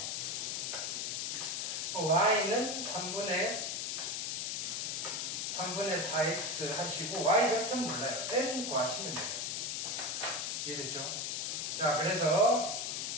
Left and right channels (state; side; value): noise; left; hiss, 1 dB below the sound